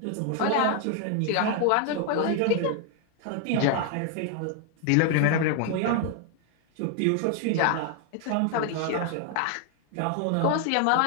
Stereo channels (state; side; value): different; both; correlation 0.00